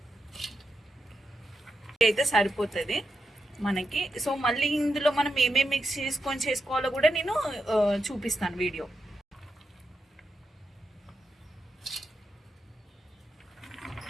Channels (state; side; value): normal; both; correlation 0.86